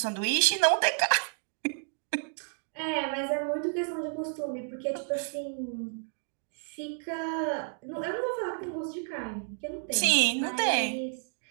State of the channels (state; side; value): silent; left; 57 dB below the other